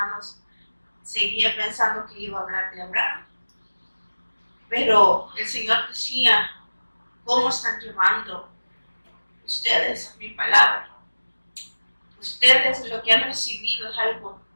seguía pensando que iba a hablar de Abraham. Pero el Señor decía, ¿cómo están llevando ustedes mi palabra? Ustedes lo que han recibido es algo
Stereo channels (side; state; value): both; inverted; correlation -1.00